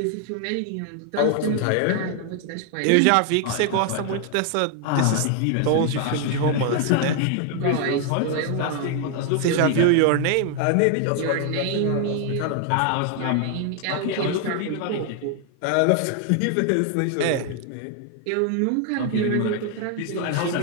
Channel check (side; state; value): both; different; correlation 0.00